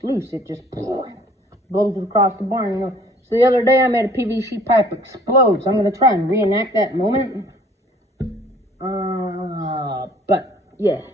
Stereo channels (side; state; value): both; normal; correlation 0.55